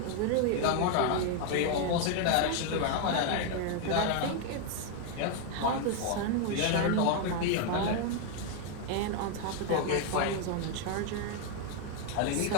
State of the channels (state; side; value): different; both; correlation 0.01